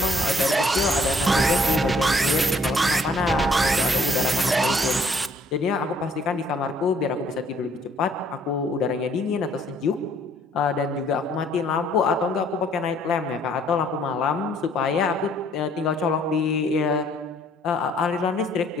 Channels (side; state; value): both; normal; correlation 0.62